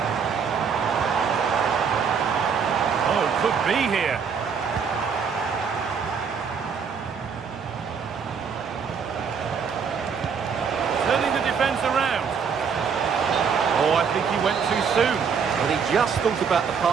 Oh, could be here. Turning the defence around. Oh, I think he went too soon. But he just thought about the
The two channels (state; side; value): quieter; left; 6.3 dB